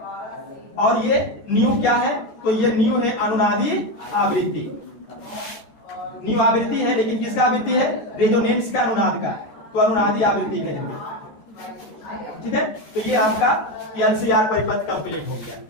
और ये न्यू क्या है, तो ये न्यू है अनुनादी आवृत्ति, न्यू आवृत्ति है, लेकिन किसका आवृत्ति है, रेजोनेंस का, अनुनाद का, तो अनुनादी आवृत्ति कहेंगे। ठीक है, तो ये आपका एलसीआर परिपथ कंप्लीट हो गया,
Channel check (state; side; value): late; right; 14 ms